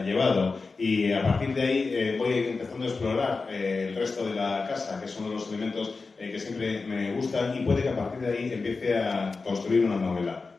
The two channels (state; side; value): quieter; right; 4.2 dB